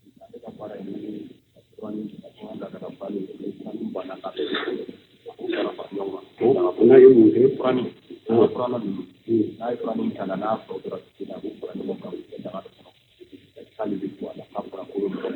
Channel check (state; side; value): identical; both; correlation 1.00